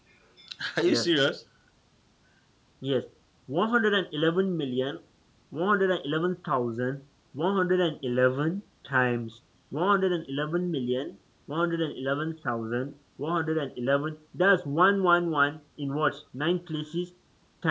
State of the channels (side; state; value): both; identical; correlation 1.00